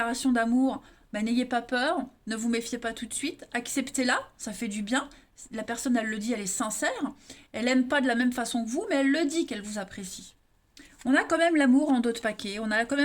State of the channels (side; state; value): both; identical; correlation 1.00